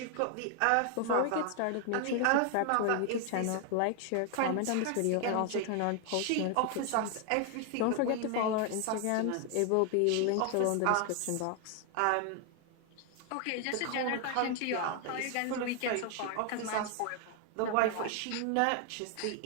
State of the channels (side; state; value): both; different; correlation 0.00